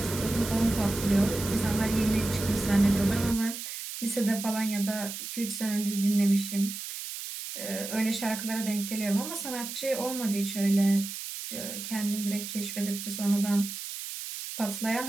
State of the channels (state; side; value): noise; right; hiss, 8 dB below the sound